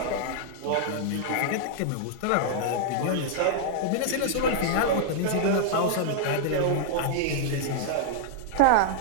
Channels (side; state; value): both; different; correlation -0.01